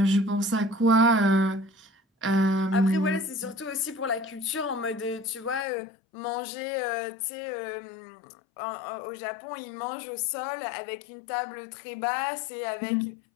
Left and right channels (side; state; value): right; drops out; at 5.7 s